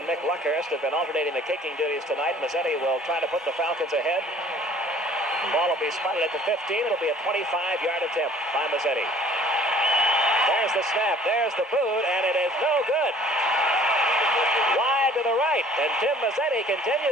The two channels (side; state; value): both; normal; correlation 0.53